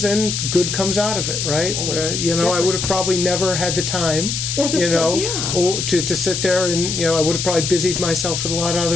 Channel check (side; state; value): left; noise; hiss, 2 dB below the sound